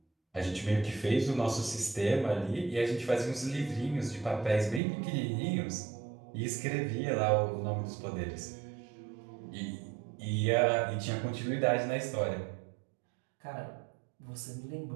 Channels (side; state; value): left; drops out; at 4.8 s